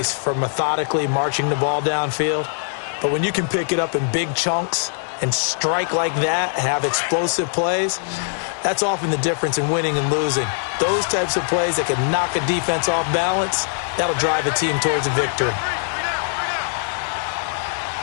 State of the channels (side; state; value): right; silent; digital silence